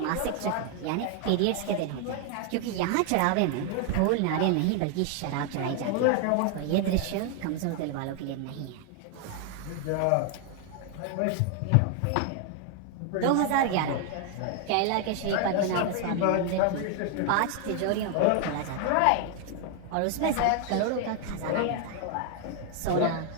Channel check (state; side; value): different; both; correlation 0.01